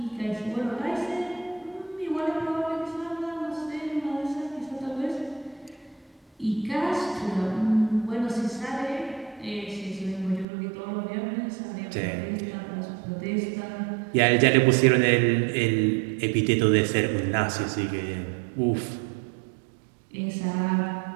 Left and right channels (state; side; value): drops out; left; at 10.5 s